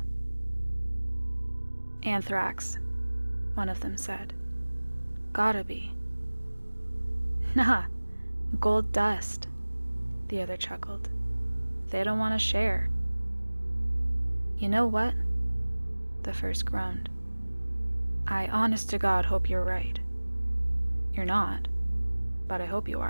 Anthrax, one of them said. Gotta be. Nah, gold dust, the other chuckled. They don't want to share. You know what? The first groaned. I honest to God hope you're right. You're not, but I hope you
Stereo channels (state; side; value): inverted; both; correlation -1.00